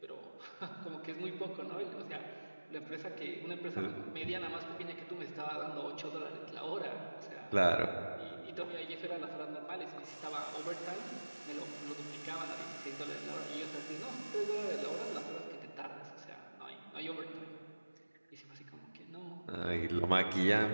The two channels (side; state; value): both; inverted; correlation -1.00